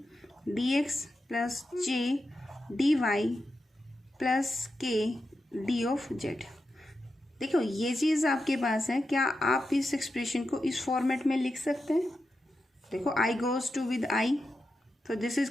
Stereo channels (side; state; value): both; normal; correlation 0.89